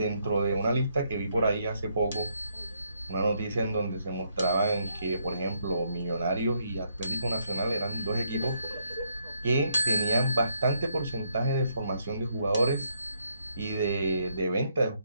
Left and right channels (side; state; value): both; inverted; correlation -0.74